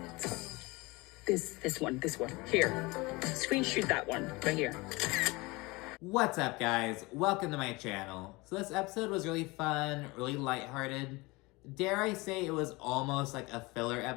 this one. Here. Screenshot that one right here. What's up, guys? Welcome to my channel. So this episode was really fun, really lighthearted. Dare I say it was almost like a filler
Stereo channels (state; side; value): quieter; right; 23.9 dB